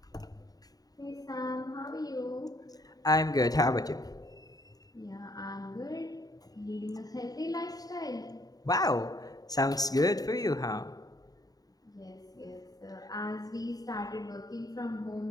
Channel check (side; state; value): right; late; 0.18 ms